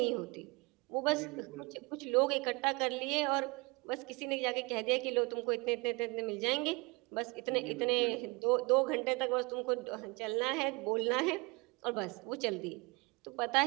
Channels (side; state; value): left; quieter; 27.5 dB